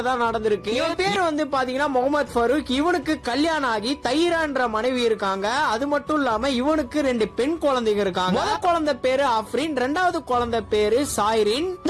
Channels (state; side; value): identical; both; correlation 1.00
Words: தான் நடந்திருக்கு. இவன் பேர் வந்து பாத்தீங்கன்னா முகமது ஃபரூக். இவனுக்கு கல்யாணம் ஆகி தைரான்ற மனைவி இருக்காங்க. அது மட்டும் இல்லாம இவனுக்கு 2 பெண் குழந்தைங்க இருக்காங்க. முதல் குழந்தை பேரு அஃப்ரின், 2வது குழந்தை பேரு சாய்ரின்.